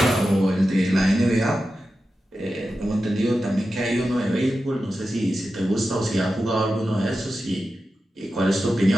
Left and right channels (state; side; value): normal; both; correlation 0.92